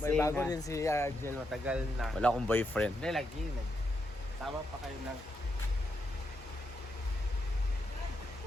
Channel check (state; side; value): normal; both; correlation 0.82